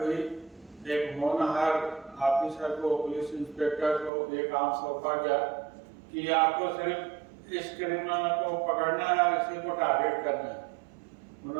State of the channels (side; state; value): left; drops out; at 4.1 s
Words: हुई, एक होनहार ऑफिसर को, पुलिस इंस्पेक्टर को ये काम सौंपा गया कि आपको सिर्फ इस क्रिमिनल को पकड़ना है और इसी को टारगेट करना है।